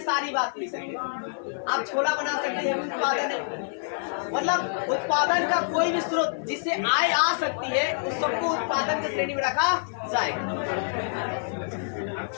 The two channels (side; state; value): right; silent; 60 dB below the other